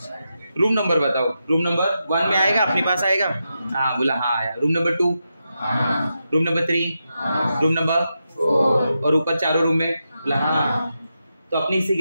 रूम नंबर बताओ। रूम नंबर 1 में आएगा, अपने पास आएगा? हाँ बोला, हाँ आया। Room number 2, room number 3, room number 4, और ऊपर चारों रूम में बोला हाँ। तो अपने हिस्से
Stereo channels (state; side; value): inverted; both; correlation -0.87